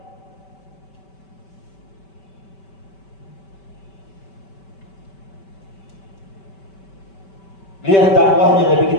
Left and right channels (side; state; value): right; late; 5.2 ms